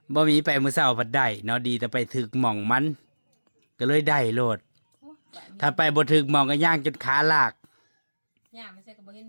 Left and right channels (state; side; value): inverted; both; correlation -1.00